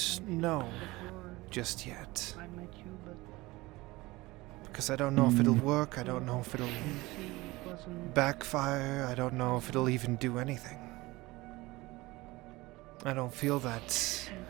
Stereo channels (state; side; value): quieter; left; 20.8 dB